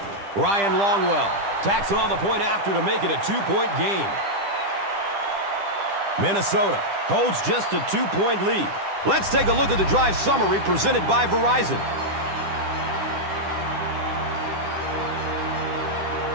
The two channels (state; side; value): late; left; 10 ms